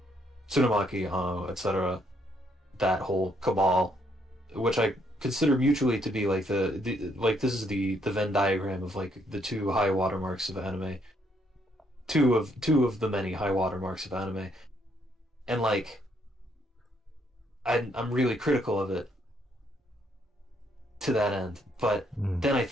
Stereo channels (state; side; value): normal; both; correlation 0.71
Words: Tsurumaki, etc. That whole cabal, which I consider mutually to be like the like this is the Venn diagram of like the two high watermarks of anime, two of the many high watermarks of anime, and like I'm really critical of it to that end. But Mm. then I